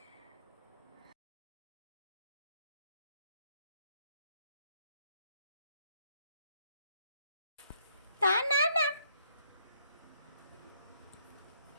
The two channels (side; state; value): both; inverted; correlation -0.71